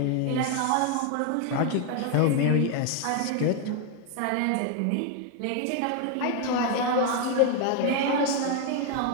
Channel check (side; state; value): both; different; correlation 0.01